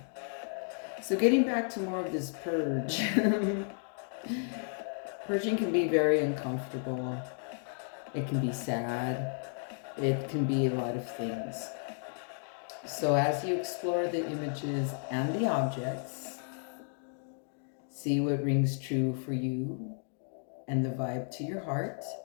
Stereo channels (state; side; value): silent; right; 56 dB below the other